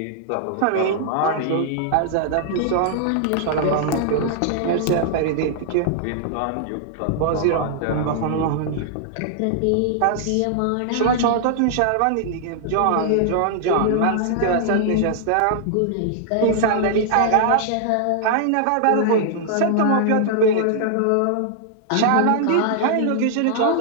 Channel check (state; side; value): different; both; correlation -0.01